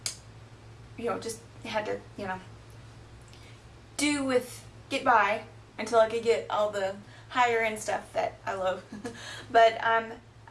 just had to, get by until I could get all the higher end stuff that I love. But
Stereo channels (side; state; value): both; identical; correlation 1.00